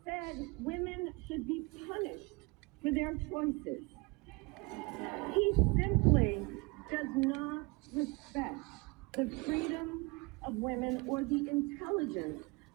said women should be punished for their choices. He simply does not respect the freedom of women or the intelligence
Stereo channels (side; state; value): left; quieter; 27.1 dB